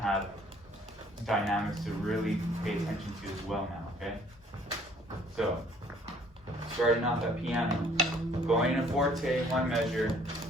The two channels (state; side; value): normal; both; correlation 0.59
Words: have dynamics to really pay attention to as well now, okay? So, starting off at piano, going in a forte, 1 measure,